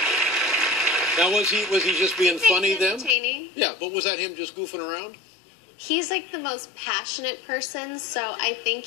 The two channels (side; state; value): right; drops out; at 3.2 s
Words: Now, was he just being funny then? Entertaining. Yeah, but was that him just goofing around? He's like the most passionate person, so I think